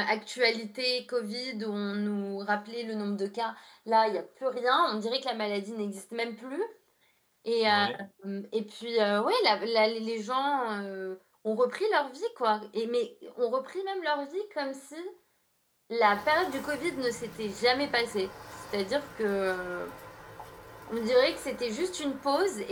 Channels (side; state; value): both; identical; correlation 1.00